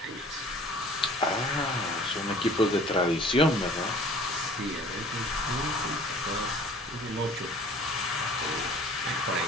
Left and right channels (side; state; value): both; normal; correlation 0.49